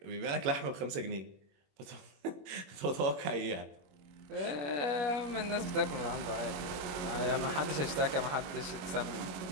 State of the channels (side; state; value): left; late; 21 ms